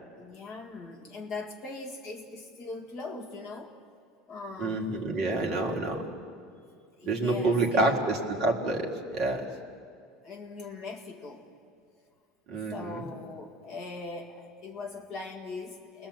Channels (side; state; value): both; normal; correlation 0.44